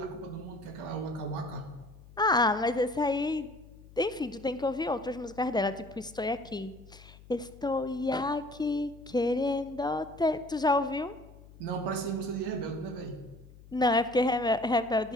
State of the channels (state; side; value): noise; left; hum, 21 dB below the sound